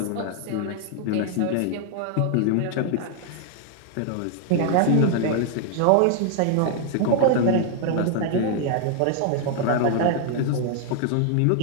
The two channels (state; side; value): different; both; correlation 0.00